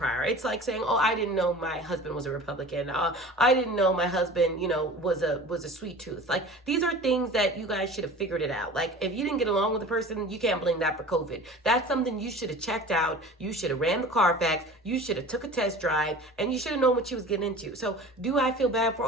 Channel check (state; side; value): normal; both; correlation 0.39